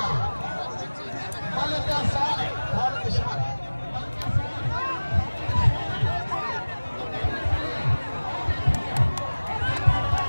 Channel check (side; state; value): both; inverted; correlation -1.00